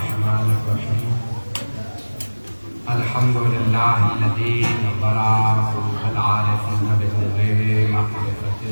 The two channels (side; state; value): both; inverted; correlation -1.00